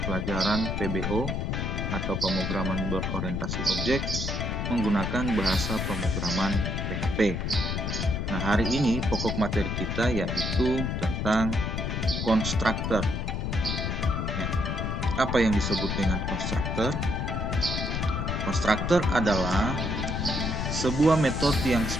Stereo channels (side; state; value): left; noise; rumble, 1 dB below the sound